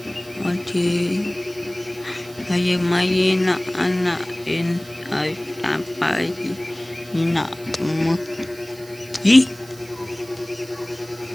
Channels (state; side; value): noise; right; hiss, 20 dB below the sound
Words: oti ay mayina anak ay tapay ina mo.